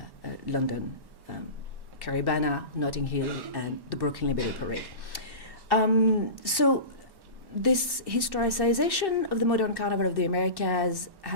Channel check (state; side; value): late; left; 1.1 ms